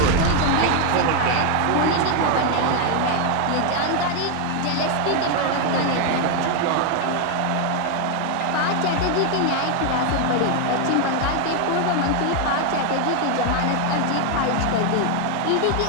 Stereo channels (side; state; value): both; different; correlation 0.01